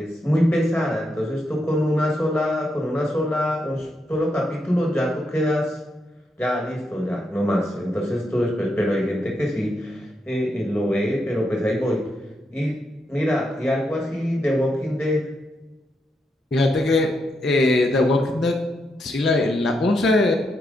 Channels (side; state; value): both; normal; correlation 0.82